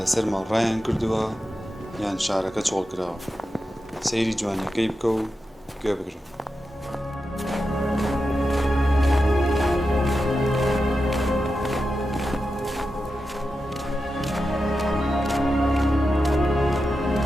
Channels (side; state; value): both; normal; correlation 0.90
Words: لەسەر ماڵڕایان کردووە یان شارەکە چۆڵ کراوە سەیری جوانیەکەی بکە و گوێ بگرە